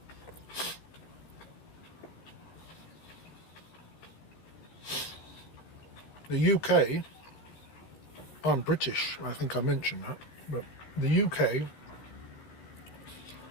The UK, I'm British, I think I mentioned that, but the UK,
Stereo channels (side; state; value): right; late; 14 ms